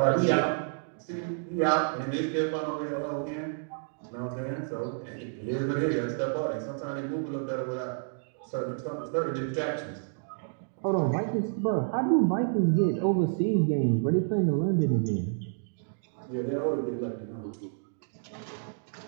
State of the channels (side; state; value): left; silent; digital silence